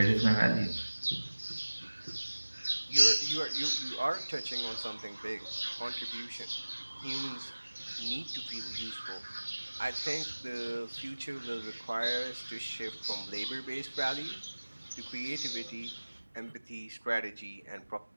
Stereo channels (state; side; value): inverted; both; correlation -1.00